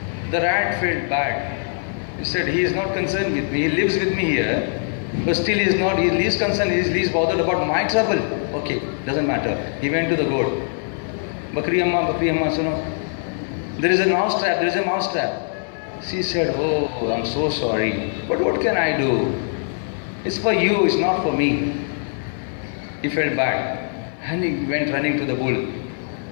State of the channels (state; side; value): silent; right; 64 dB below the other